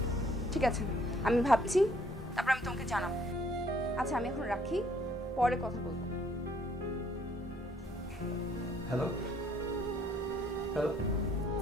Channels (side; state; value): both; normal; correlation 0.63